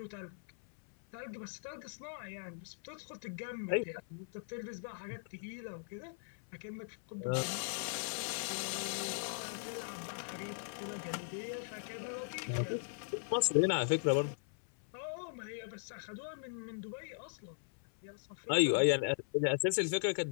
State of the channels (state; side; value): silent; right; 52 dB below the other